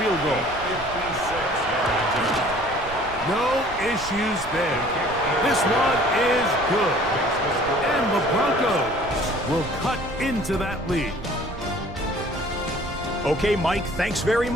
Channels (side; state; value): right; noise; rumble, 15 dB below the sound